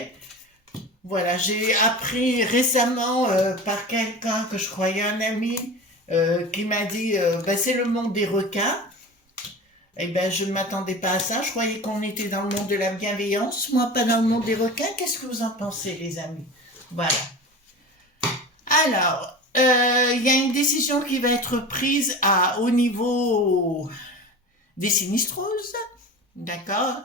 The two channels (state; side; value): normal; both; correlation 0.32